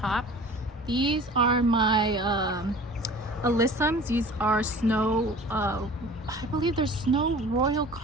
These are my alyssums. These are snow, I believe they're snow royal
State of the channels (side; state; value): both; normal; correlation 0.44